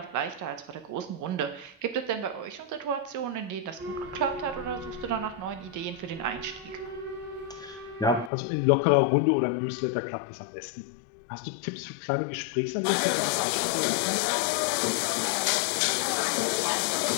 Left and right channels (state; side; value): drops out; right; at 8.3 s